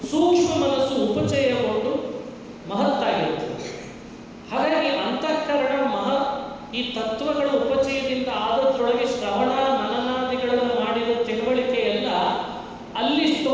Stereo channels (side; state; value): both; identical; correlation 1.00